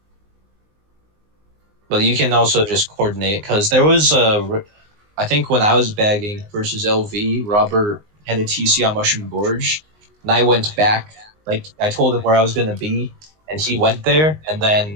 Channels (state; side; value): late; left; 19 ms